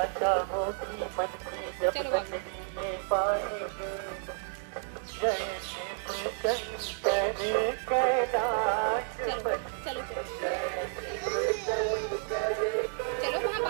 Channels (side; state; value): left; silent; 57 dB below the other